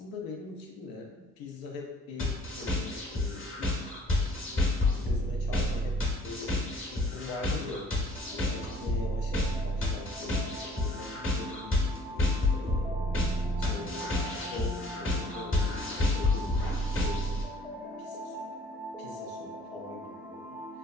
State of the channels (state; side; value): normal; both; correlation 0.57